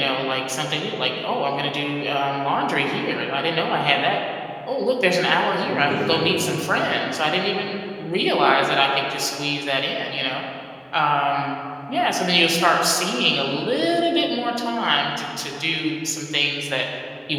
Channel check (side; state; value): both; identical; correlation 1.00